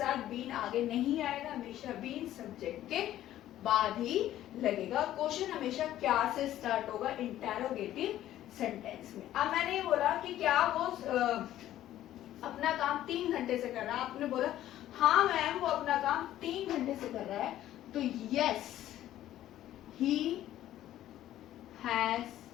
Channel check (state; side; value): quieter; right; 13.0 dB